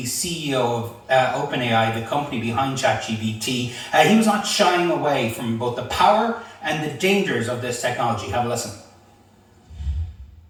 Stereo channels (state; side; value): identical; both; correlation 1.00